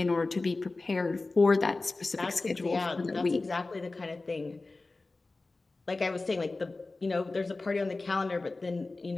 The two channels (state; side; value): quieter; right; 3.4 dB